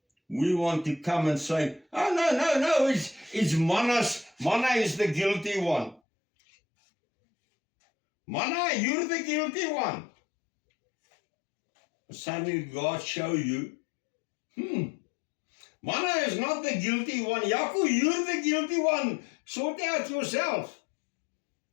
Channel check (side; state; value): right; drops out; at 6.0 s